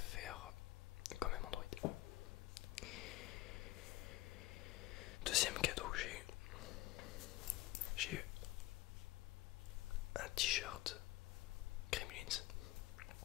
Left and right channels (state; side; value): quieter; right; 17.6 dB